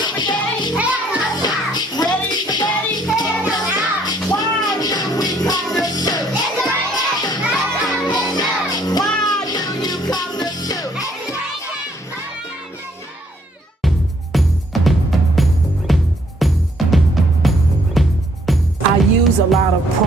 A lot of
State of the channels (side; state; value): both; normal; correlation 0.65